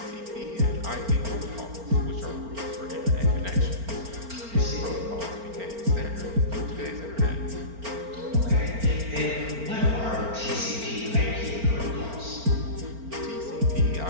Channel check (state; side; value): late; left; 4.4 ms